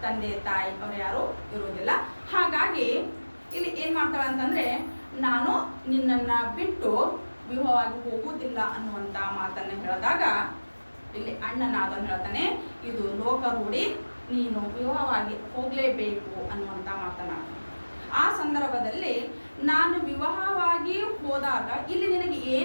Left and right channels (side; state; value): both; inverted; correlation -1.00